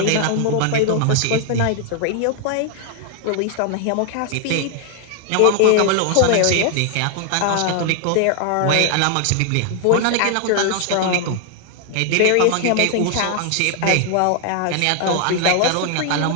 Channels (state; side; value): different; both; correlation 0.00